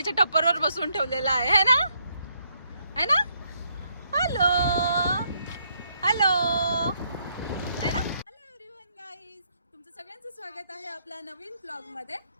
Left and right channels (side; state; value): both; inverted; correlation -0.74